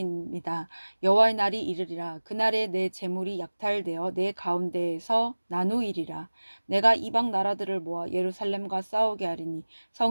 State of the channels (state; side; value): inverted; both; correlation -1.00